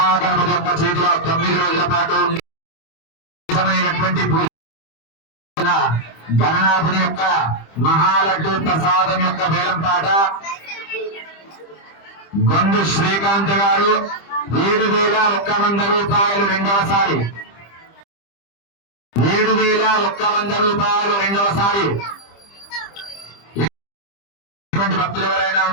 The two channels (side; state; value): right; late; 25 ms